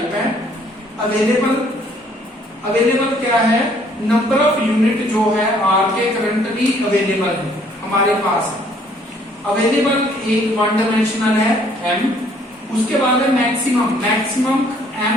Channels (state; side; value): normal; both; correlation 0.62